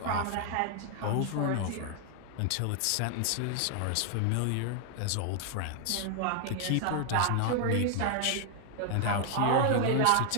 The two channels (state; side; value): different; both; correlation 0.00